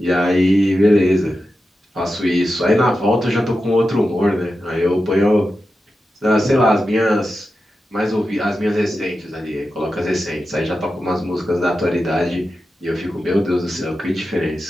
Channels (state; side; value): normal; both; correlation 0.91